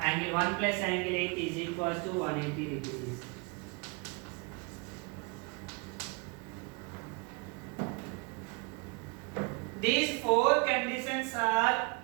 1 plus angle 8 is equals to 180 degrees. These four conditions are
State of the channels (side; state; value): left; quieter; 30.4 dB